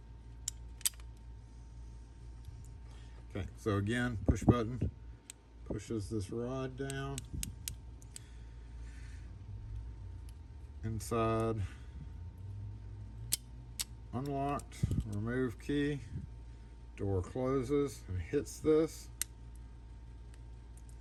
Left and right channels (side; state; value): both; identical; correlation 1.00